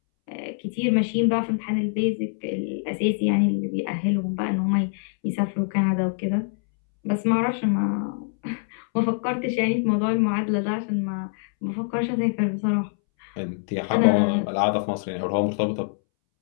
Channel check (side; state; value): right; silent; 62 dB below the other